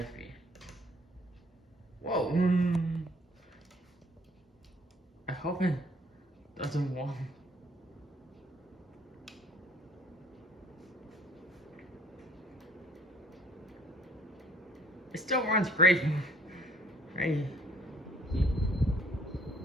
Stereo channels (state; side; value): normal; both; correlation 0.60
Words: speed. Whoa! I hope it doesn't warm. It still runs great. Right?